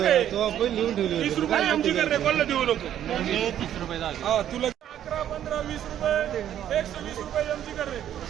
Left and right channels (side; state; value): left; quieter; 10.8 dB